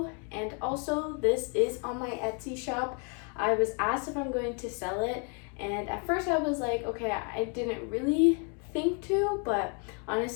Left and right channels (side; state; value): right; quieter; 36.5 dB